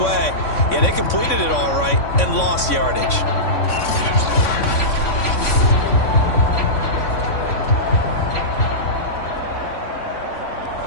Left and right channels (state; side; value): late; right; 3.6 ms